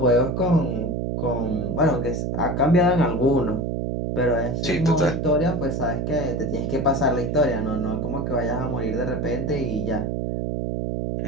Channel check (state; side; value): noise; right; hum, 1 dB below the sound